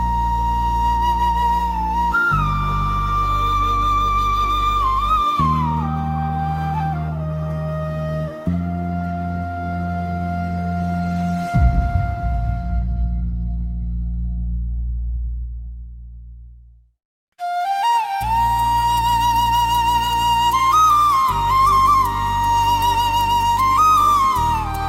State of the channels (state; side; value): identical; both; correlation 1.00